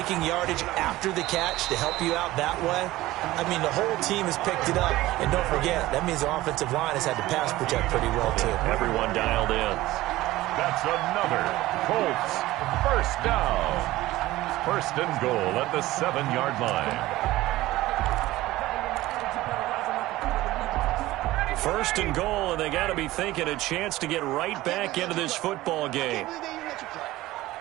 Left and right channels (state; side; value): quieter; left; 17.2 dB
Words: yardage after the catch to help you out that way. I mean, the whole team has picked it up. And don't forget, that means the offensive line has had to pass protect pretty well, too. Everyone dialed in. That's another Colts 1st down. 1st and goal at the 7-yard line. 1st and goal, and they got to be thinking a chance to get right back into this football game.